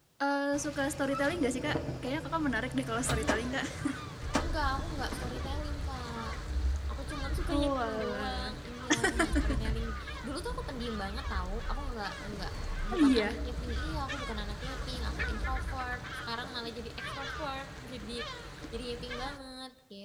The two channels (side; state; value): both; identical; correlation 1.00